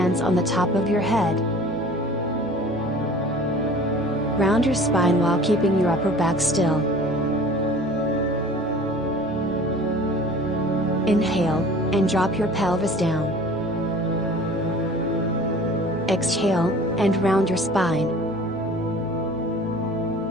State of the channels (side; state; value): both; normal; correlation 0.45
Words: on the top of your head. Round your spine while keeping your upper back still. Inhale, and drop your pelvis down. Exhale, and round your spine.